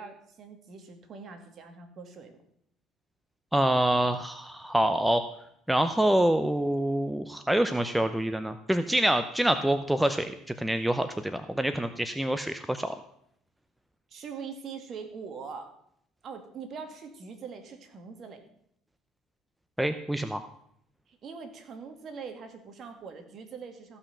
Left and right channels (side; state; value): both; normal; correlation 0.93